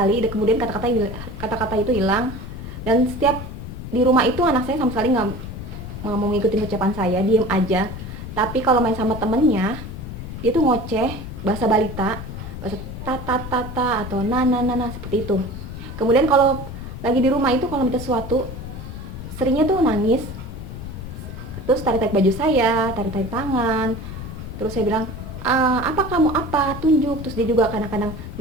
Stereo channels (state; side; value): noise; left; rumble, 9 dB below the sound